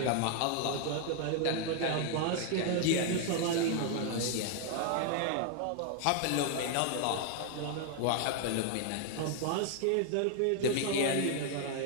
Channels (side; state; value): both; different; correlation 0.00